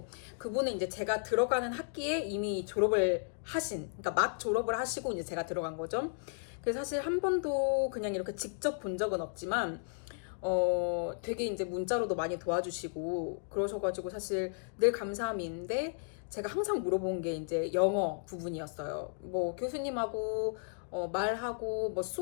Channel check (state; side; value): silent; right; digital silence